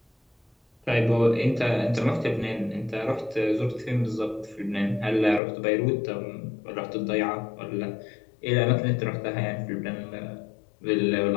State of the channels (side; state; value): right; drops out; at 5.4 s